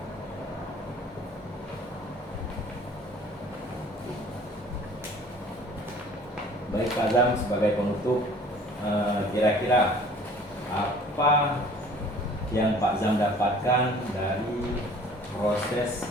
Baik Pak Zam, sebagai penutup, kira-kira apa yang Pak Zam dapatkan dari proses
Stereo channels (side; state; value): both; normal; correlation 0.50